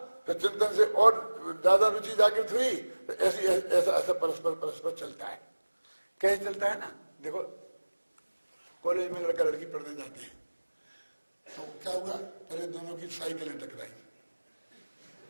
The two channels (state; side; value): inverted; both; correlation -1.00